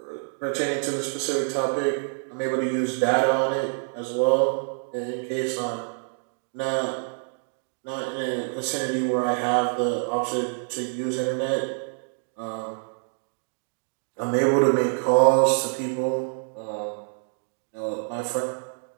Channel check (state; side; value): silent; left; digital silence